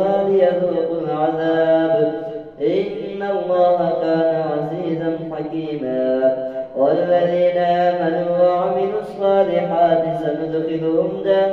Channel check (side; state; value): both; identical; correlation 1.00